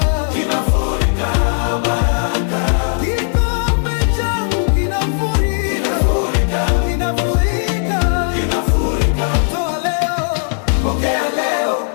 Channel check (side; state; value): right; silent; 62 dB below the other